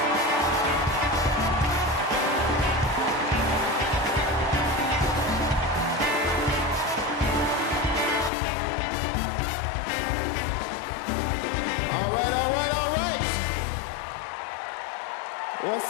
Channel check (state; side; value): drops out; right; at 8.3 s